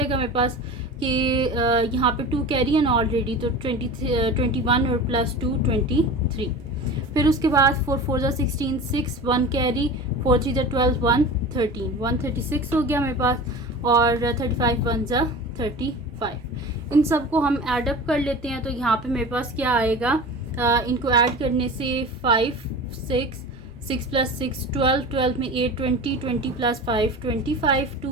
मेरे पास कि यहाँ पे 2 कैरी है ना ऑलरेडी, तो 21 और प्लस 2 23। फिर उसके बाद 4 4 ज़ा 16, 6 1 कैरी, 4 3 ज़ा 12, 1 13, 136 हो गया मेरे पास। और 35 1 ज़ा 35। इन सब को हम ऐड अप कर लेते हैं। तो यहाँ पे मेरे पास क्या आएगा, इनको ऐड करने से 5 6 6 प्लस 6 12, 12 में 8 20, 20 प्लस 5 25,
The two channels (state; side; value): normal; both; correlation 0.34